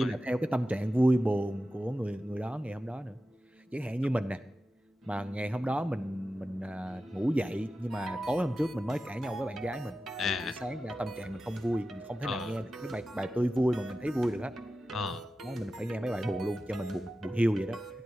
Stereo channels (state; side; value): normal; both; correlation 0.93